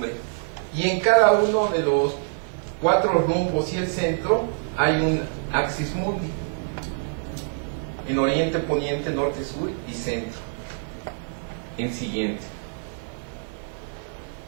Y en cada uno de los 4 rumbos y el centro hay un Axis Mundi, en oriente, poniente, norte, sur y centro. El siguiente.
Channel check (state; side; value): silent; left; 62 dB below the other